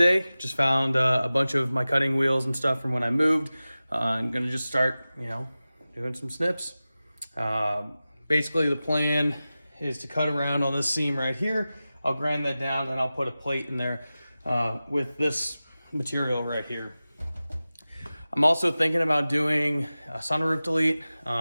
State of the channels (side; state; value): both; inverted; correlation -0.96